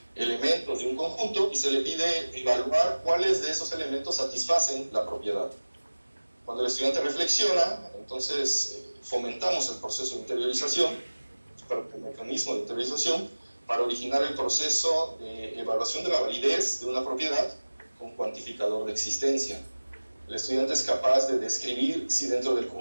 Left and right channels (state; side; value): inverted; both; correlation -1.00